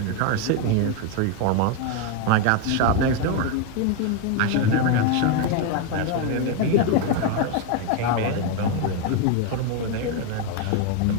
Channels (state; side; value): different; both; correlation 0.01